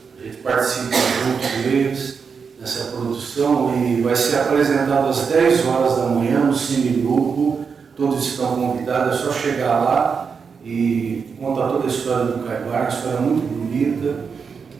A gente participa junto deles nessa produção e vai ser apresentado às 10 horas da manhã no Cine Grupo. Todos estão convidados, é só chegar lá e contar toda a história do Caibar, uma história muito bonita.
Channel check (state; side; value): quieter; left; 5.8 dB